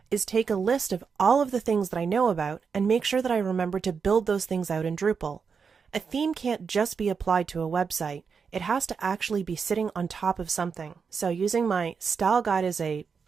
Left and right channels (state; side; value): quieter; left; 5.8 dB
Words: is take a list of all of the things that I know about and make sure that I remember to build those things out in Drupal. A theme can't just be applied to a website. It has to actually be sitting on top of something. So using my style guide as a